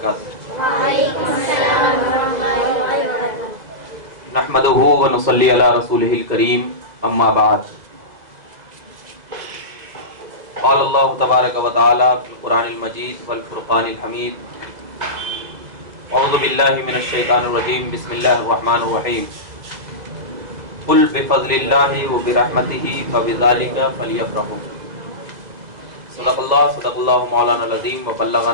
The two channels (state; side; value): late; left; 2.0 ms